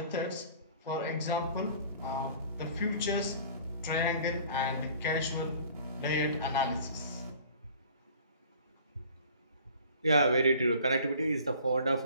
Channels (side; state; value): both; inverted; correlation -0.49